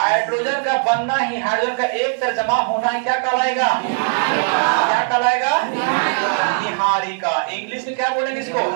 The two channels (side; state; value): left; silent; digital silence